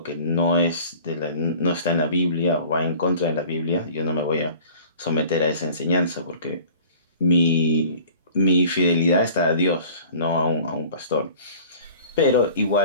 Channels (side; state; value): both; inverted; correlation -0.46